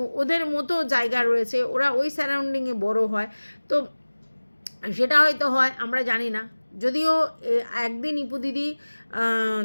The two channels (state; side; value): inverted; both; correlation -1.00